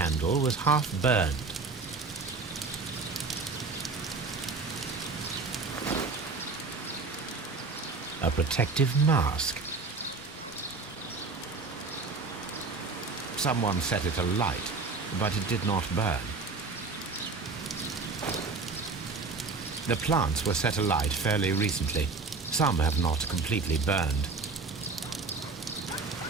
was half burned. A protective mask. Someone set it alight, but it did not burn. The plants were set alight fairly recently. Some have not completely burned.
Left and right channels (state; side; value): quieter; left; 4.2 dB